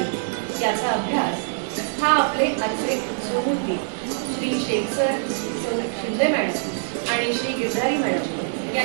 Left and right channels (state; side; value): silent; left; 63 dB below the other